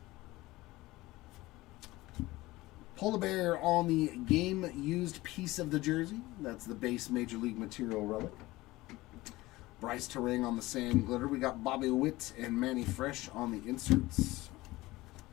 Polar Bear on the game used piece of the jersey. That's the base Major League Material relic. Bryce Terang on the Sand Glitter. We got Bobby Witt and Manny Fresh on the inserts.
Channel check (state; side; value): quieter; right; 19.2 dB